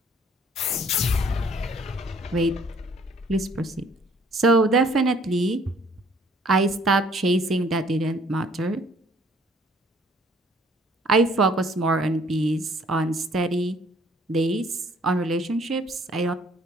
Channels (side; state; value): both; normal; correlation 0.59